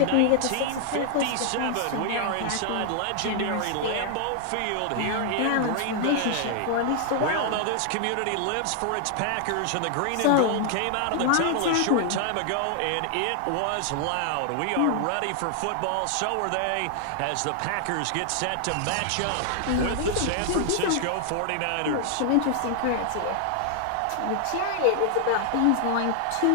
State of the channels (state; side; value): different; both; correlation 0.00